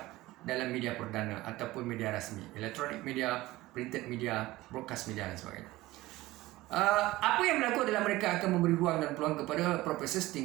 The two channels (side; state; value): left; quieter; 18.2 dB